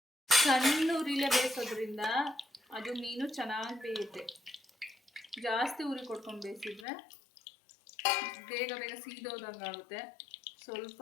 ಸಣ್ಣ ಉರಿಲೇ ಬೇಯಿಸೋದ್ರಿಂದ ಅದು ಮೀನು ಚೆನ್ನಾಗಿ ಬೇಯುತ್ತೆ. ಜಾಸ್ತಿ ಉರಿ ಕೊಡ್ಕೊಂಡು ಬೇಯಿಸಿದ್ರೆ ಬೇಗ ಬೇಗ ಸೀದೋದಂಗೆ ಆಗುತ್ತೆ. ಸ್ವಲ್ಪ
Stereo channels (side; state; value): right; drops out; at 6.9 s